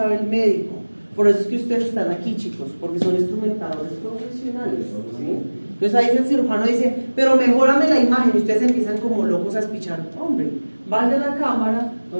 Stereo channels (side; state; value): both; inverted; correlation -1.00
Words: el médico. Por eso es que ustedes están aquí, chicos, porque son instrumentadores profesionales, ¿sí? Entonces ahí el cirujano dice, pero mejórame la imagen, y ustedes empiezan como locos a espichar. Hombre, vaya a la cámara